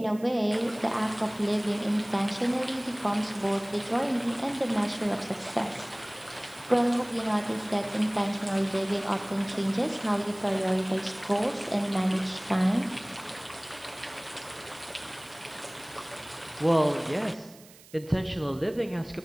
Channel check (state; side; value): noise; right; hiss, 22 dB below the sound